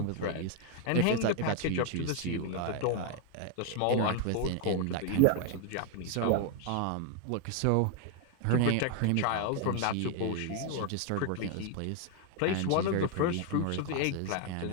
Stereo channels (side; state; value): both; different; correlation 0.00